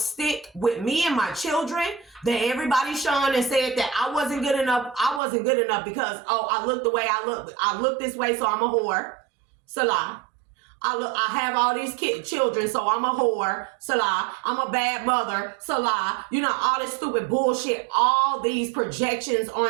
with me and my children. That everybody shone and said that I wasn't good enough. I wasn't good enough because, I look the way I look. I look this way, so I'm a whore. Salah. I have all these children, so I'm a whore. Salah. I'm a bad mother. Salah. You know, all this stupid bullshit. All these projections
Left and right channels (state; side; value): drops out; left; at 5.2 s